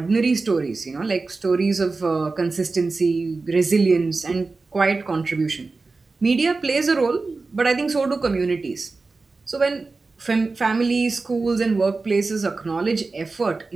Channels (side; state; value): left; quieter; 3.8 dB